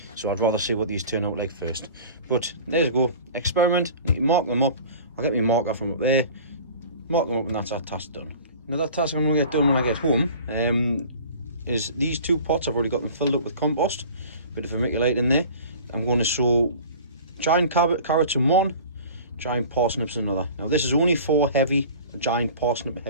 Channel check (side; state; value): both; inverted; correlation -0.42